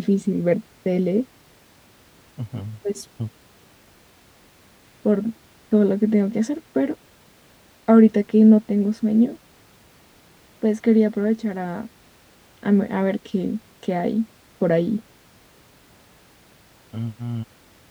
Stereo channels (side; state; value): both; identical; correlation 1.00